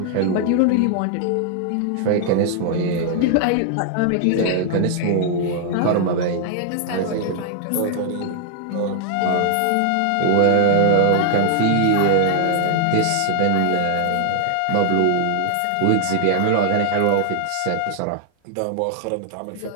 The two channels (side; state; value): both; different; correlation 0.00